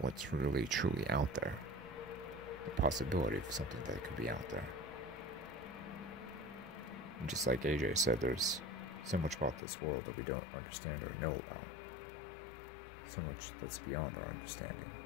what's really, truly out there. The possibility of something that could be out there. And just like AJ said, there's so much about this world that we don't understand or know about. So much that's beyond our understanding.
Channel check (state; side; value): drops out; right; at 9.6 s